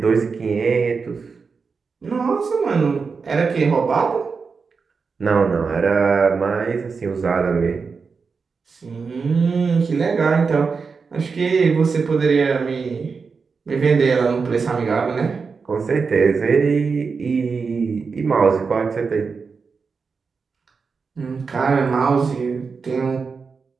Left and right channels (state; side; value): quieter; left; 5.1 dB